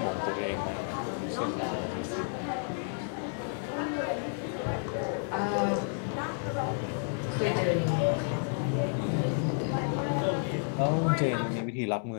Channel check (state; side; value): silent; right; 57 dB below the other